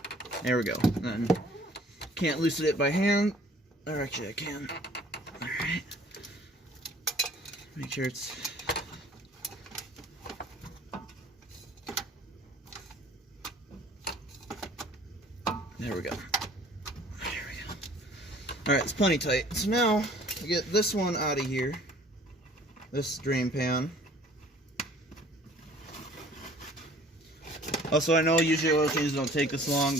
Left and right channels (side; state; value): both; normal; correlation 0.52